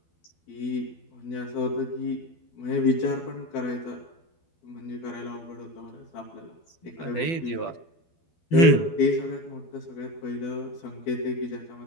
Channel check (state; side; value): late; right; 12 ms